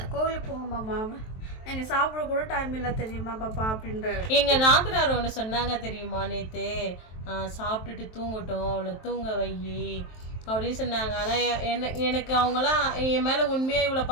கோவிலுக்கு போங்க மாமா, எனக்கு சாப்பிட கூட டைம் இல்லை தெரியுமா பாப்பா அப்படின்ற. எங்கள் நாத்தனார் ஒன்று சொன்னாங்க தெரியுமா, நேற்று சாப்பிட்டுட்டு தூங்கட்டும், அவளை தூங்க வை அப்படின்னு சொன்னாங்க. ஆனால் எனக்கு அவங்களாம் என் மேலே உண்மையாக இவ்வளோ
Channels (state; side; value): late; right; 23 ms